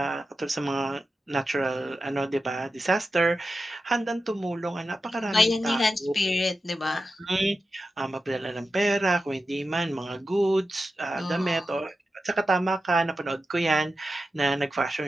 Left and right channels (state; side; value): normal; both; correlation 0.91